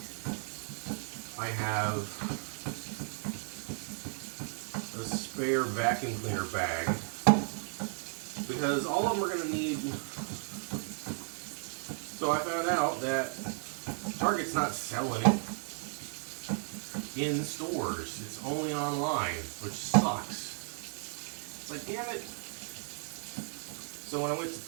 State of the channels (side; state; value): left; silent; 55 dB below the other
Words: I have a spare vacuum cleaner bag because all of them are going to need. So I found out that Target's not selling it in the stores. It's only online, which sucks. It's like, damn it. So when I went to